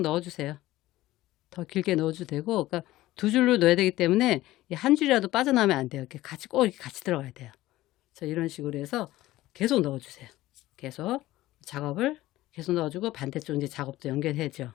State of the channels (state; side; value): quieter; right; 16.5 dB